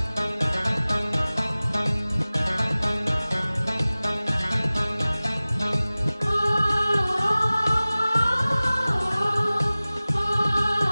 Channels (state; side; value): inverted; both; correlation -0.98